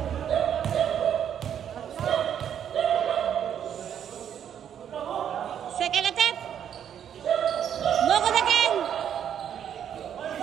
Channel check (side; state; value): left; quieter; 9.1 dB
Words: Second attempt. No good again.